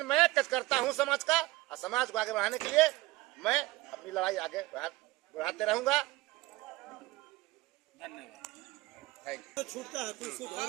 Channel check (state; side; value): quieter; left; 19.6 dB